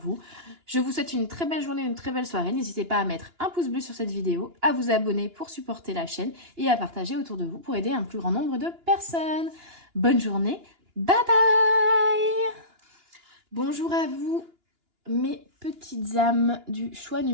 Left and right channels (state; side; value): late; left; 2.9 ms